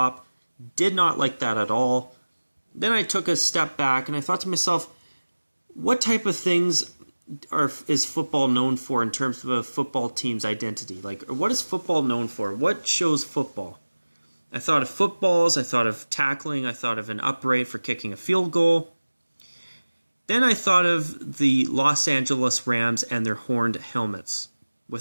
Did not like that at all. Then I took a step back and I thought to myself, what type of things is football known for in terms of a football team's identity? Like, what is football known for? What shows football? I thought of footballs, I thought of tackling, I thought of an upright for kicking a field goal. Then I thought of the Los Angeles Rams and their horned helmets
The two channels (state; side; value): inverted; both; correlation -1.00